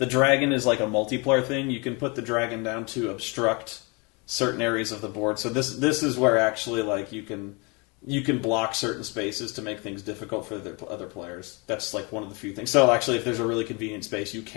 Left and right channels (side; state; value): right; quieter; 29.9 dB